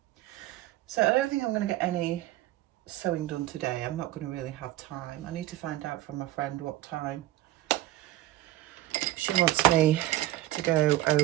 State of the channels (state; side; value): quieter; left; 15.2 dB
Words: So I don't think I'm going to get any sewing done today. I'm not going to really have time. I need to find out from my friend what time she wants me to go